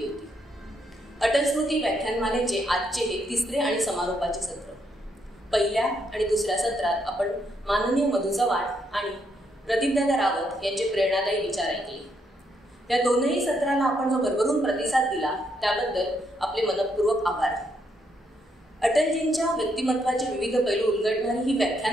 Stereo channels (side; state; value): both; normal; correlation 0.76